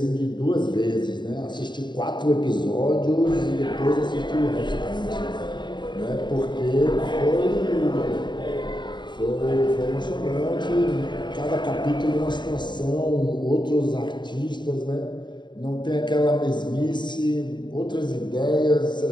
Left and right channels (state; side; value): late; right; 0.22 ms